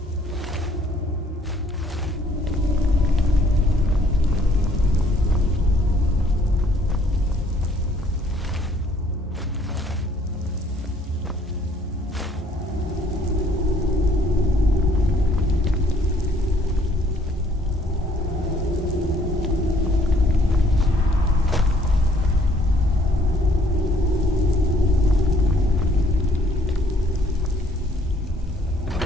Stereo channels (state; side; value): normal; both; correlation 0.62